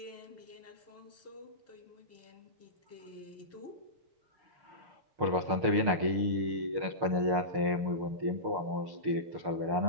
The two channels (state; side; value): late; left; 6.6 ms